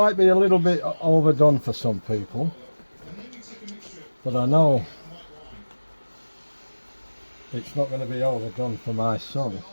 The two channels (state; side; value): inverted; both; correlation -1.00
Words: be a little bit overdone for some people, but I know it's not going to be overdone for my son.